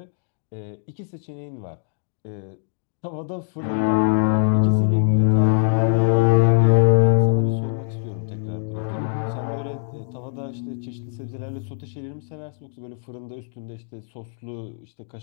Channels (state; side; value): silent; right; digital silence